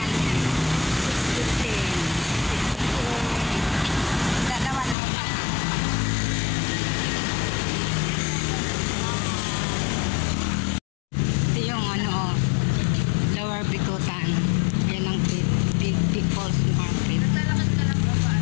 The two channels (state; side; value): drops out; right; at 5.0 s